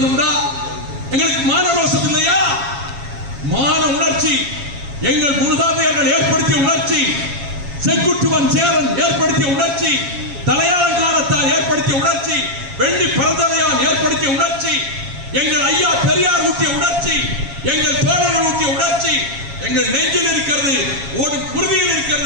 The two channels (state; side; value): late; left; 7.3 ms